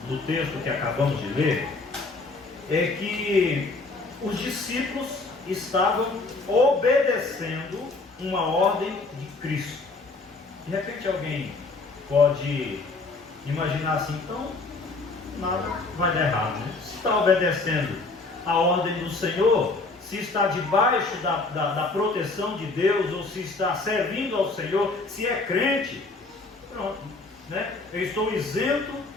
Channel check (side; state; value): right; quieter; 3.6 dB